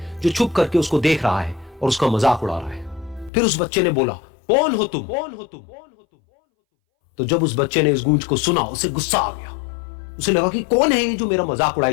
जो छुप करके उसको देख रहा है और उसका मजाक उड़ा रहा है। फिर उस बच्चे ने बोला, कौन हो तुम? कौन हो तुम? तो जब उस बच्चे ने इस गूंज को सुना, उसे गुस्सा आ गया। उसे लगा कि कौन है ये जो मेरा मजाक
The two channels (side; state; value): right; drops out; at 3.3 s